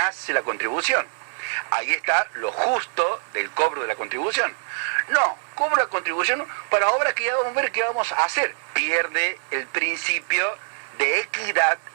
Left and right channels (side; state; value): left; silent; digital silence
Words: la contribución. Ahí está lo justo del cobro de la contribución. No, cobro la contribución para obras que ya vamos a ver qué vamos a hacer. Pierde el principio de equidad